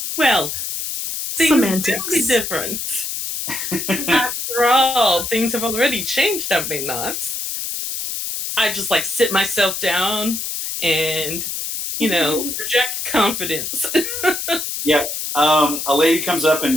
Well, things Semantics. will be different. After all, things have already changed, have they not? I just like sit myself down and, project confidence. Yeah. A lady comes up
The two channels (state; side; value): noise; left; hiss, 4 dB below the sound